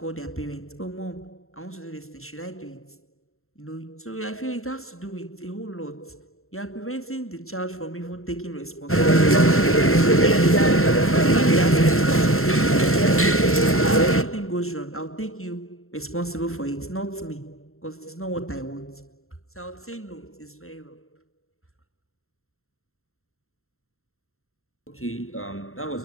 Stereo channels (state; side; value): late; right; 0.62 ms